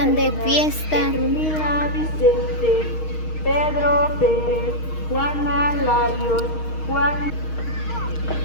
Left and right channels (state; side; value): late; right; 6.4 ms